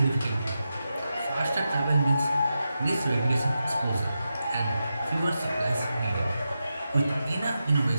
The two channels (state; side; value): inverted; both; correlation -0.89